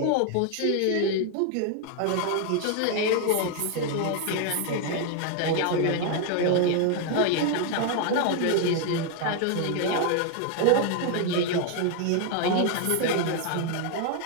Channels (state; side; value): different; both; correlation 0.00